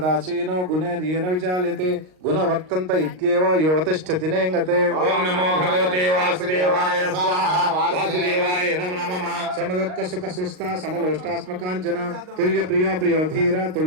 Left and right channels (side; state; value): left; late; 38 ms